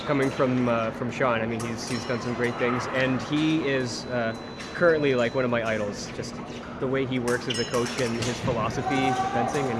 from Sean. I mean, he's done some great things, and he is currently like one of my idols. Just the way he works as a coach and his philosophy of fencing, and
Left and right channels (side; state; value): both; identical; correlation 1.00